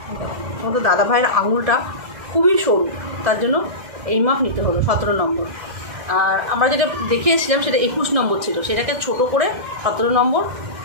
তোমাদের দাদাভাইয়ের আঙুলটা খুবই সরু, তার জন্য এই মাপ নিতে হলো 17 নম্বর। আর আমরা যেটা দেখিয়েছিলাম সেটা 21 নম্বর ছিল, সেটাকে ছোট করে 17 নম্বর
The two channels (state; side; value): late; left; 1.7 ms